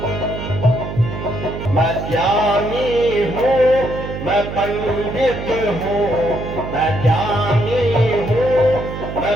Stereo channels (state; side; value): noise; right; hum, 8 dB below the sound